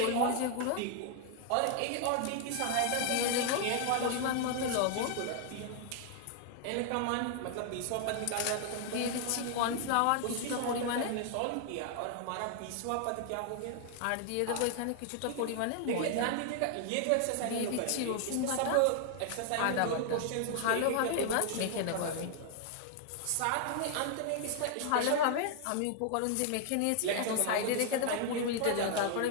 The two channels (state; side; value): different; both; correlation 0.00